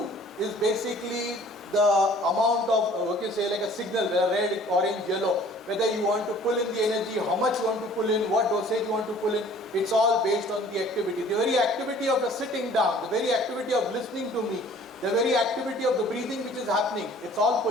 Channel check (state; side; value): normal; both; correlation 0.52